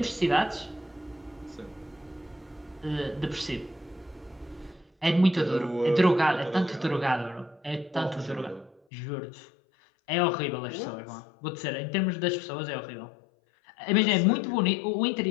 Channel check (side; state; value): right; drops out; at 8.8 s